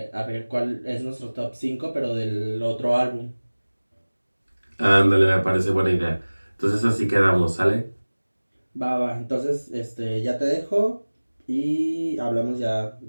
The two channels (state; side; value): inverted; both; correlation -1.00